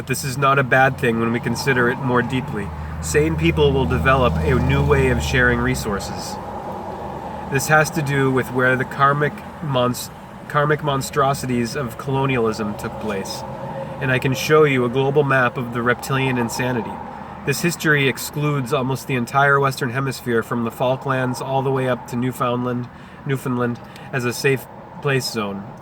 this is not a bad thing when we consider it more deeply. Sane people will develop a new way of sharing resources. This has to do with where the karmic monstrosities of colonialism took place. And I can show you a global map of the reptilian insanity. This history excludes almost the entire Western Hemisphere from the Falklands all the way up to Newfoundland as a safe place zone.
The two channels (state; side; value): identical; both; correlation 1.00